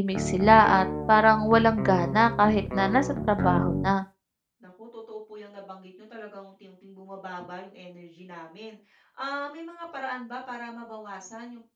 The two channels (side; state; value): both; identical; correlation 1.00